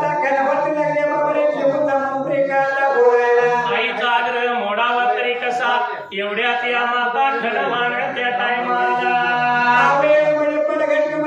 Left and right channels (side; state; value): both; identical; correlation 1.00